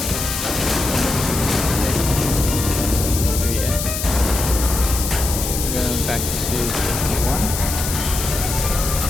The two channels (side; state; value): left; noise; hiss, 4 dB below the sound